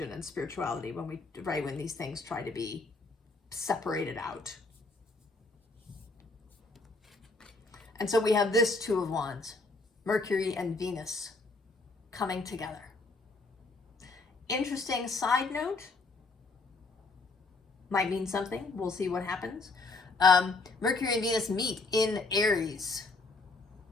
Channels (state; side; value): quieter; right; 3.5 dB